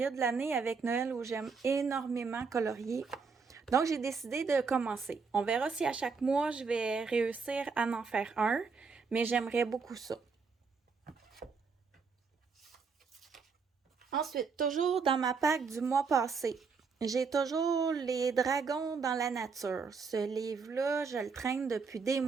de l'année avec Noël où j'aime énormément colorier. Donc, j'ai décidé de commencer. On verra si à chaque mois, je vais réussir à en faire un, mais j'aimerais beaucoup ça. Ensuite, toujours dans ma pack du mois passé, j'ai toujours les dragons dans la nature. Ce livre-là, je le traîne depuis des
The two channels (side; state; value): left; quieter; 5.1 dB